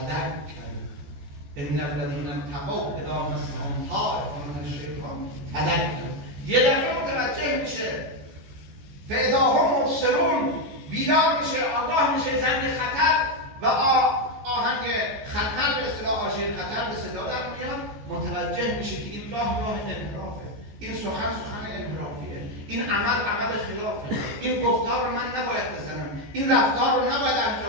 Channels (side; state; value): left; late; 14 ms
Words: ان الذین اتقوا اذا مسهم طائف من الشیطان تذکر. یه دفعه متوجه میشه، فاذا هم مبصرون، بیدار میشه، آگاه میشه زنگ خطر و آهنگ خطر به اصطلاح، آژیر خطر به صدا در میاد. متوجه میشه که این راه انحرافه، این سخن انحرافیه، این عمل خلافه، این گفتار رو من نباید بزنم، این رفتار رو نباید